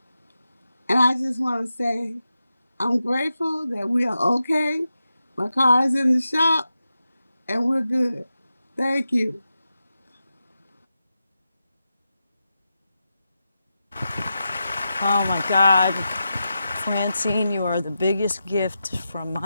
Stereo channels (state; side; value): inverted; both; correlation -0.90